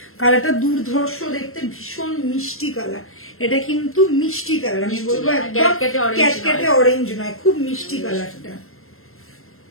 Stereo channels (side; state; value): right; late; 0.62 ms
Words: কালারটা দুর্ধর্ষ দেখতে, ভীষণ মিষ্টি কালার। এটা কিন্তু মিষ্টি কালার, আমি বলবো একদম ক্যাটকেটে অরেঞ্জ নয়, খুব মিষ্টি কালারটা।